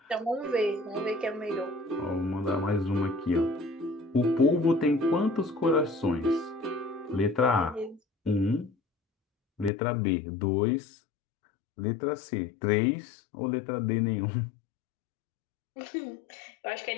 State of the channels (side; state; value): right; drops out; at 9.7 s